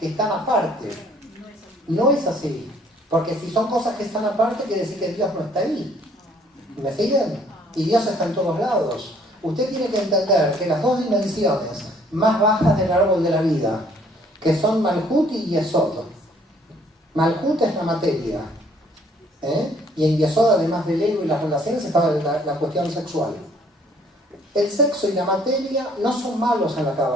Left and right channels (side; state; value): both; normal; correlation 0.61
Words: están aparte. No es así. Porque si son cosas que están aparte, quiere decir que Dios no está ahí. ¿Me siguen? Y Dios está en todos lados. Usted tiene que entender que las dos dimensiones más bajas del árbol de la vida, que son Malhut y Yesod. Malhut es la materia. Y en Yesod, además del ego y las relaciones, estaba la cuestión sexual. El sexo y la materia no son malos en la